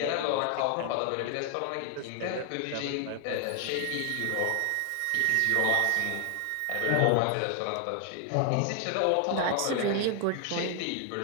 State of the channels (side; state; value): both; different; correlation 0.00